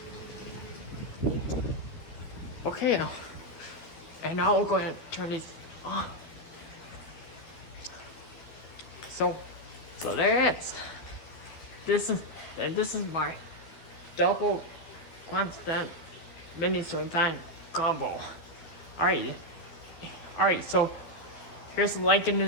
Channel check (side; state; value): right; late; 12 ms